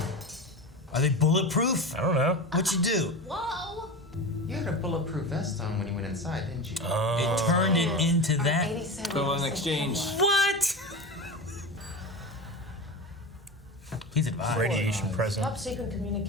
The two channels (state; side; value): normal; both; correlation 0.27